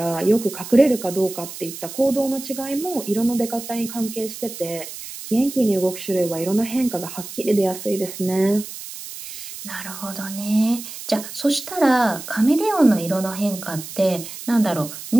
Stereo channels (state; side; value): noise; right; hiss, 11 dB below the sound